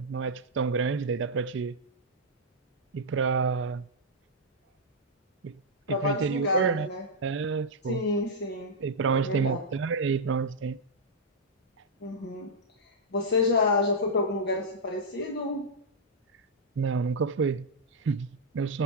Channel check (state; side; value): normal; both; correlation -0.06